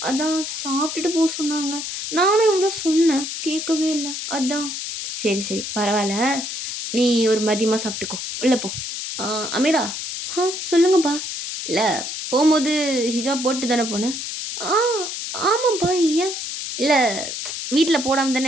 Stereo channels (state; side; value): noise; left; hiss, 5 dB below the sound